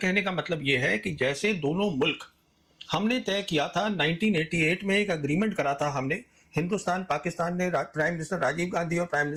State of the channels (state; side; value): identical; both; correlation 1.00